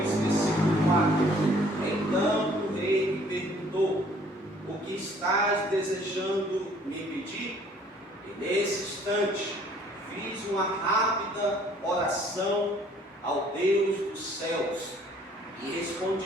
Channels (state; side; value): normal; both; correlation 0.58